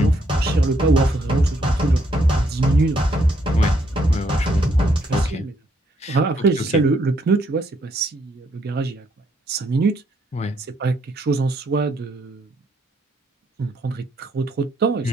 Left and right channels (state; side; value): normal; both; correlation 0.72